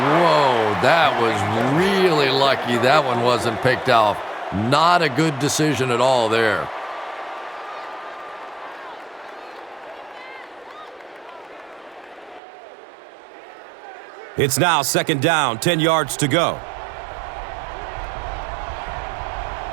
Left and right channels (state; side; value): drops out; left; at 12.4 s